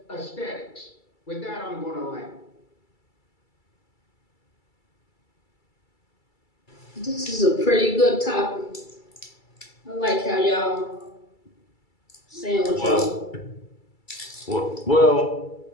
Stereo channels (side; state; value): right; late; 2.3 ms